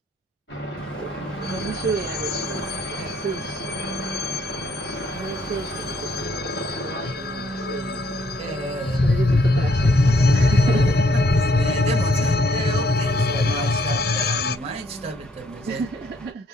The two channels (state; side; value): normal; both; correlation 0.68